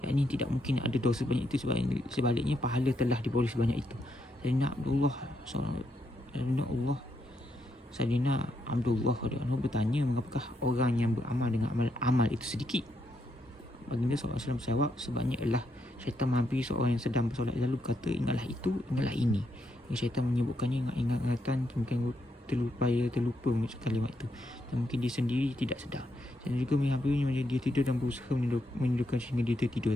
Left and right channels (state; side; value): normal; both; correlation 0.79